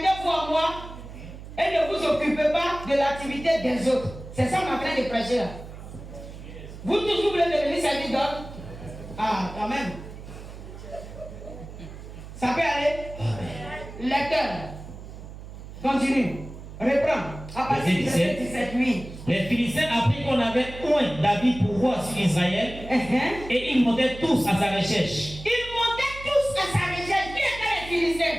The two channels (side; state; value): right; noise; hum, 13 dB below the sound